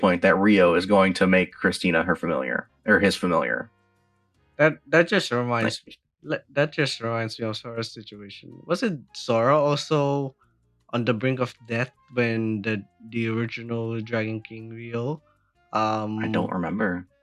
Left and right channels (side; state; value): both; identical; correlation 1.00